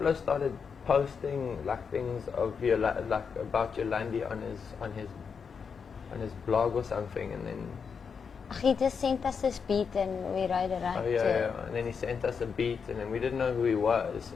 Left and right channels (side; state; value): right; quieter; 6.1 dB